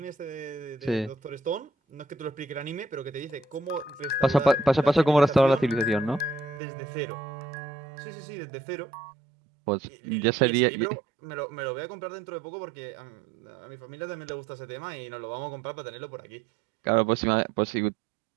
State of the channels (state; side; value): drops out; left; at 6.6 s